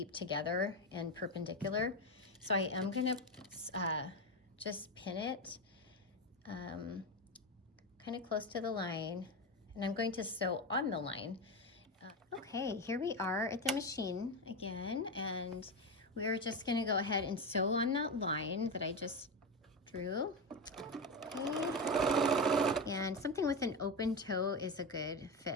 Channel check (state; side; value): normal; both; correlation 0.15